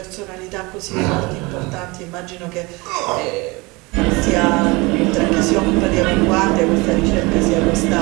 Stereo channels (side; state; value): left; quieter; 24.8 dB